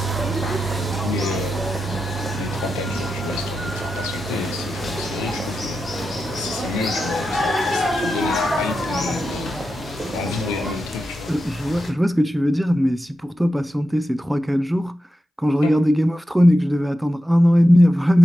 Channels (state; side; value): normal; both; correlation 0.90